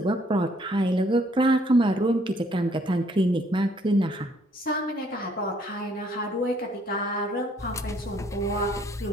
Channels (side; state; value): both; normal; correlation 0.65